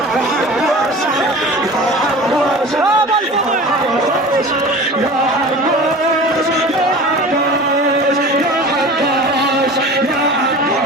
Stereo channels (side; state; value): both; normal; correlation 0.38